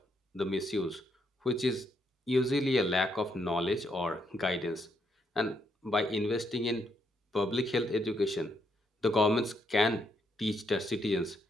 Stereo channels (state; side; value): normal; both; correlation 0.75